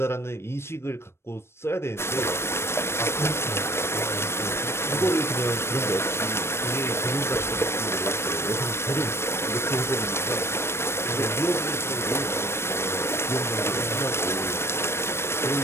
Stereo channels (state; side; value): late; right; 0.12 ms